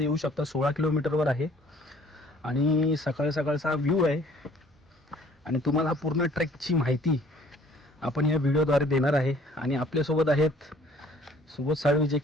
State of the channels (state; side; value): normal; both; correlation 0.56